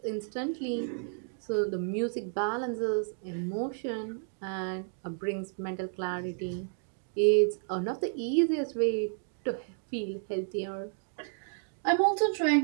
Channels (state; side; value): silent; left; digital silence